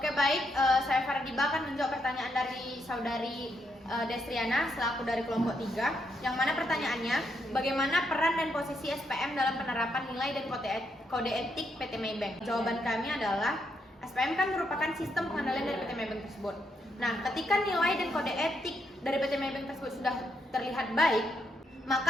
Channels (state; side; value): normal; both; correlation 0.79